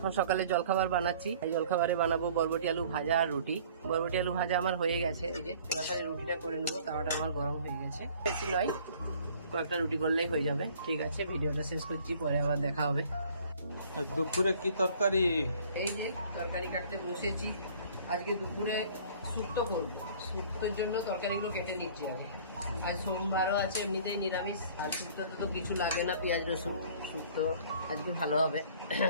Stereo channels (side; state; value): both; inverted; correlation -0.52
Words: সকালে জলখাবার বানাচ্ছি। এই জলখাবারে বানাবো বরবটি আলু ভাজা আর রুটি। বরবটি আলু ভাজা আমার হয়ে গেছে, এই যে তাড়াতাড়ি রুটিটা করে নেবো। তাওয়াটা আমার গরম হয়ে গেছে, বেশি নয়, কয়েকটা রুটি করলেই হয়ে যাবে। ঠিক আছে, ভিডিওটা শেষ করছি, পরে আবার দেখা হবে। আর দুপুরে কি তরকারি? এই যে তরকারি কাটতে বসেছি। আজকে দুপুরে শুক্তো করবো। শুক্তোর জন্য তরকারিগুলো কেটে নিচ্ছি আগে। আর সোমবারও আছে, এমনিতেই নিরামিষ। আর শুক্তোতে তো কিছু লাগে না, পেঁয়াজ রসুন। শুক্তো আজকে ভালো হবে।